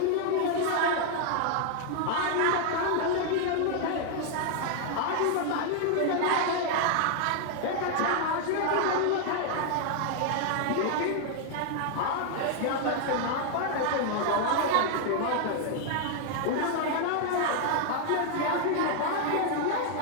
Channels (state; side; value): different; both; correlation 0.00